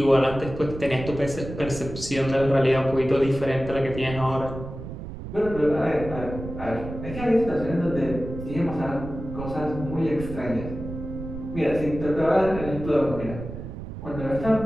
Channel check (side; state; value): right; noise; rumble, 10 dB below the sound